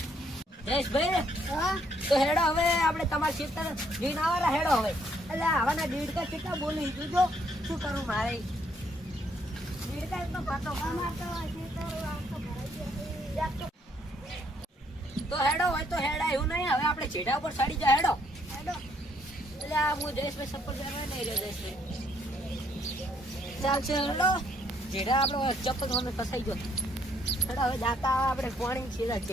જયેશભાઈ હા તો હેડો હવે આપણે તમારા ખેતર જોઈને આવરા. હેડો હવે એટલે આવાના દીડકા કેટલા બોલી જોજો શું કરું મારે. દીડકા એકદમ પાતો અમાર તો ક્ષેત્ર આવતો ભરાઈ ગયો. તો હેડો હોય તો હેડા એવું નહીં. હવે આપણે છેડા ઉપર ચડી જાય. હેડો હેડો. એટલે આ હું જયેશભાઈ ચપ્પલ પહેરવા નહીં રહ્યો. જયેશભાઈ ચાલશે હેડો. જેડા આપણો ચપ્પલ મને ફસાઈ ગયો. હેડો હવે દાતા આપણે પાણી છેડા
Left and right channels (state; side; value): normal; both; correlation 0.69